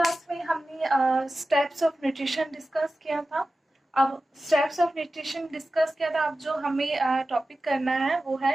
में हमने steps of nutrition discuss किया था। अब स्टेप्स ऑफ न्यूट्रिशन डिस्कस किया था। अब जो हमें टॉपिक करना है वो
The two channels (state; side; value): normal; both; correlation 0.94